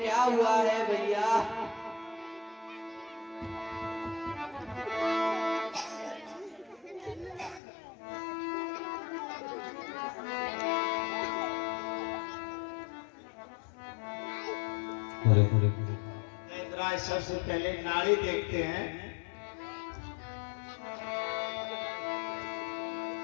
हुआ है भैया। इंद्रा सबसे पहले नाड़ी देखते हैं।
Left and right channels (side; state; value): right; drops out; at 7.6 s